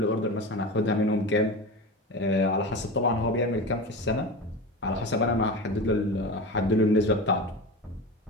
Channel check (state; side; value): normal; both; correlation 0.27